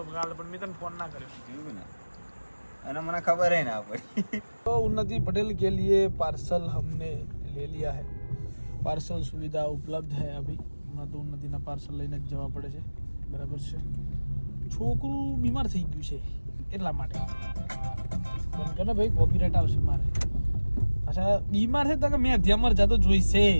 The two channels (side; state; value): both; inverted; correlation -1.00